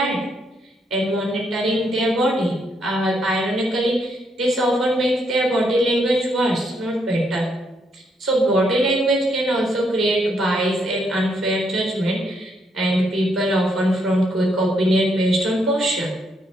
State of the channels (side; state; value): both; normal; correlation 0.75